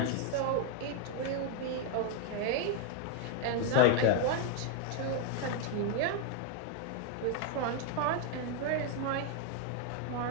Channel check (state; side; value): different; both; correlation 0.01